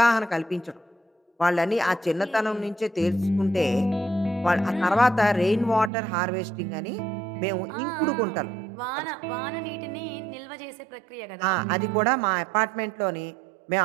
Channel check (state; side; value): drops out; left; at 5.9 s